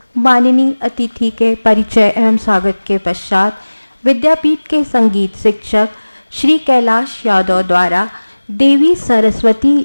माननीय अतिथि के परिचय एवं स्वागत के पश्चात विद्यापीठ के संगीत शिक्षक श्री कैलाश यादव द्वारा देवी सरस्वती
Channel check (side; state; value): both; inverted; correlation -1.00